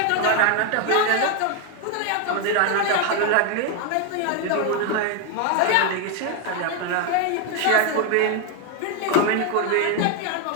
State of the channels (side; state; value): both; different; correlation 0.01